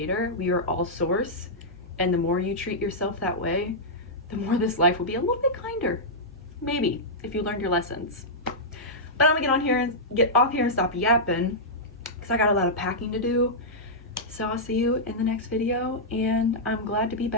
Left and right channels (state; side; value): normal; both; correlation -0.10